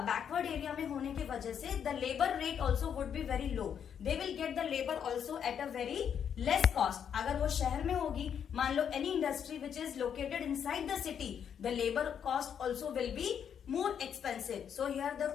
एरिया में होने की वजह से the labour rate also would be very low, they will get the labour also at a very less cost. अगर वो शहर में होगी, मान लो any industry which is located inside the city, the labour cost also will be more expensive. So here the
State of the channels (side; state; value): right; quieter; 8.2 dB